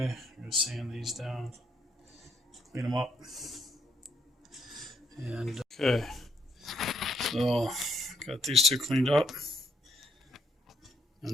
I'm gonna sand these down, clean them up. And okay, so got these 2 cleaned up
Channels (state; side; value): normal; both; correlation 0.74